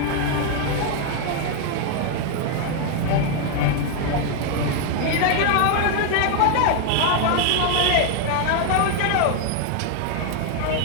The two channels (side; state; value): both; different; correlation 0.01